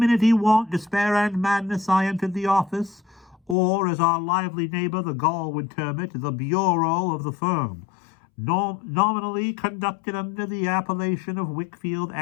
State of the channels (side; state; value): right; drops out; at 3.6 s